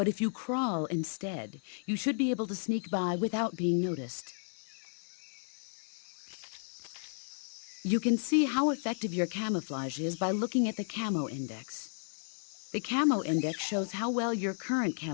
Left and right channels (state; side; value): silent; right; 55 dB below the other